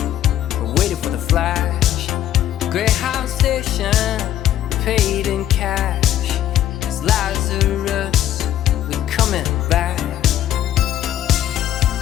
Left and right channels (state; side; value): quieter; right; 11.9 dB